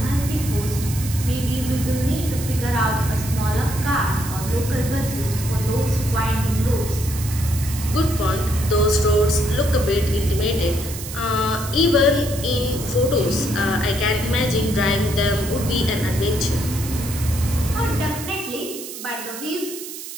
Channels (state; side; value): noise; right; hiss, 10 dB below the sound